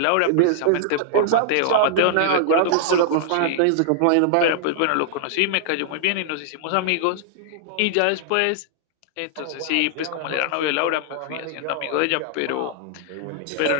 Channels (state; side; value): different; both; correlation -0.01